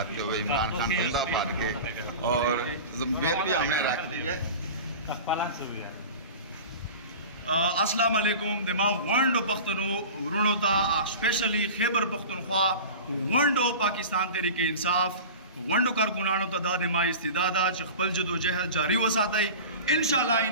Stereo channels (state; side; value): inverted; both; correlation -0.34